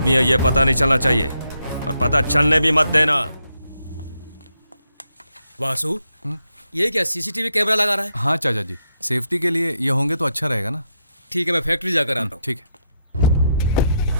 है ये पता नहीं चलना चाहिए, और पता चलने भी मत देना। वासु, ये क्या सीसीटीवी कैमरा लगा रहा है? हाँ चाचा जी, सेफ्टी के लिए ये होंगे तो अच्छा रहेगा ना। ठीक है, मैं फैक्ट्री जाकर आता हूँ। ठीक है।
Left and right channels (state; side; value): inverted; both; correlation -0.80